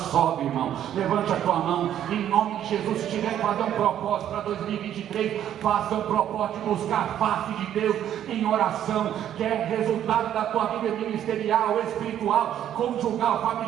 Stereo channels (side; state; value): left; quieter; 10.7 dB